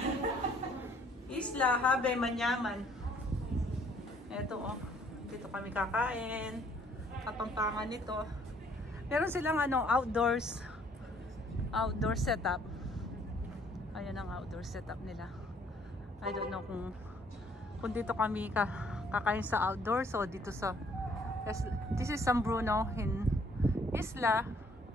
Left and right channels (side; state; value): both; normal; correlation 0.62